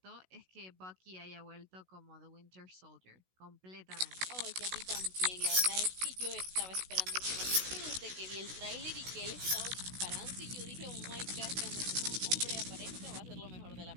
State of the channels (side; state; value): left; late; 16 ms